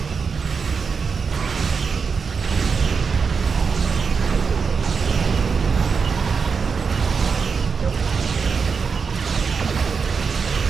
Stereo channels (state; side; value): quieter; left; 5.5 dB